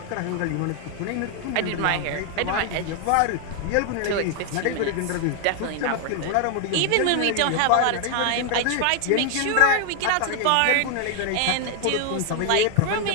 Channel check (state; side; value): different; both; correlation 0.00